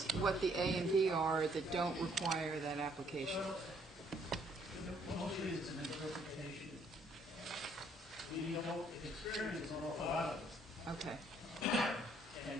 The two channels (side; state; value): both; normal; correlation 0.66